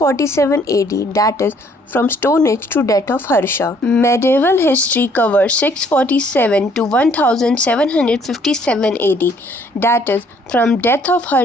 AD, that is from Stone Age to death of Harsha. Medieval history covers 647 to 1757 AD, that is from death of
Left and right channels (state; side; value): normal; both; correlation 0.63